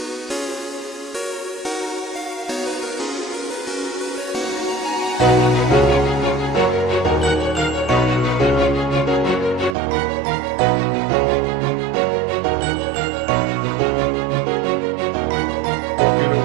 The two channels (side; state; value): left; drops out; at 9.8 s